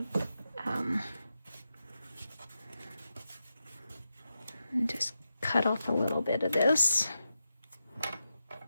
just cut off a little bit of this.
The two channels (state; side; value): inverted; both; correlation -0.88